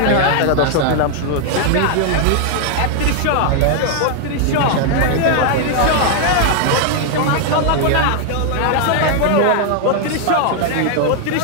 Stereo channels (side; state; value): both; different; correlation 0.00